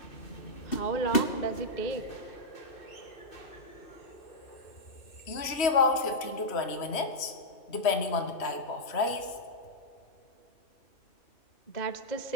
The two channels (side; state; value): right; late; 3.1 ms